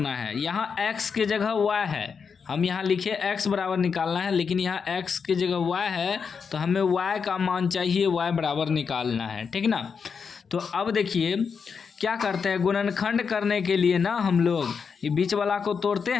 है। यहाँ x के जगह y है, हम यहाँ लिखे x बराबर निकालना है, लेकिन यहाँ x की जगह y है, तो हमें y का मान चाहिए, y बराबर निकालना है, ठीक ना। तो अब देखिए क्या करते हैं, गुणनखंड करने के लिए ना हम लोग ये बीच वाला को तोड़ते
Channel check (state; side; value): quieter; right; 6.0 dB